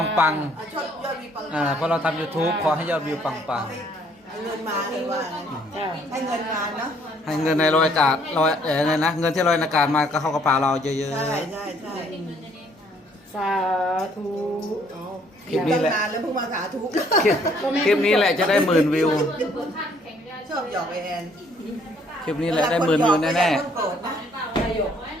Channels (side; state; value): both; normal; correlation 0.64